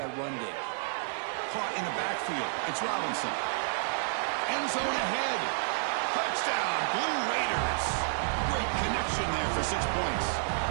run game. Caught in the backfield. It's Robinson. End zone ahead. Touchdown, Blue Raiders. Great connection there for 6 points.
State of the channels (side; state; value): left; silent; digital silence